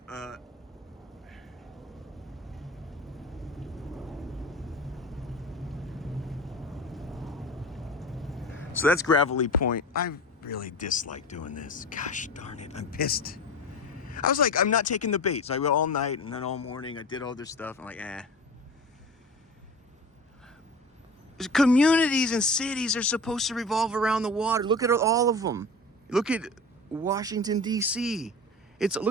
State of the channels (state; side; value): normal; both; correlation 0.33